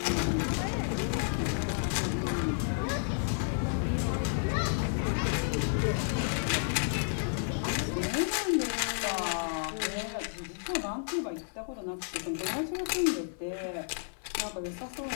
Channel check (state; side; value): silent; right; digital silence